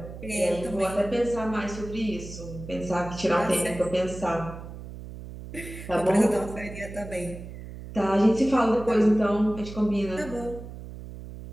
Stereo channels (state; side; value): noise; right; hum, 12 dB below the sound